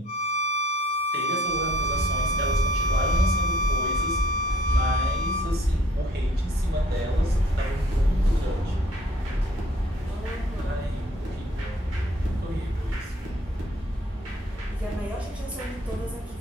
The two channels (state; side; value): normal; both; correlation 0.56